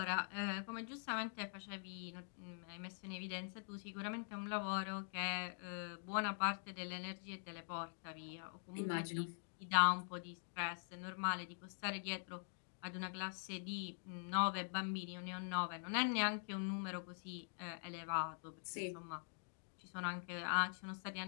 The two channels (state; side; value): silent; right; digital silence